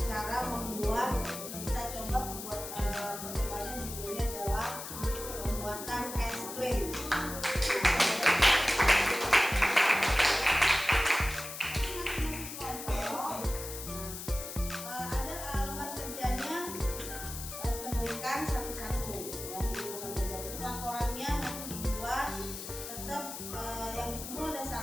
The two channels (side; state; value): left; noise; hiss, 9 dB below the sound